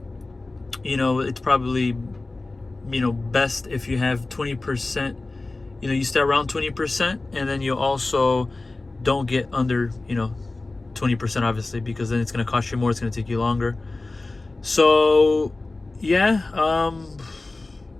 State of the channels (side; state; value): right; quieter; 3.2 dB